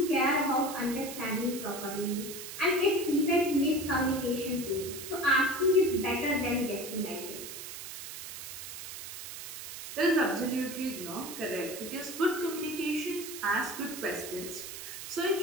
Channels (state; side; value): noise; right; hiss, 10 dB below the sound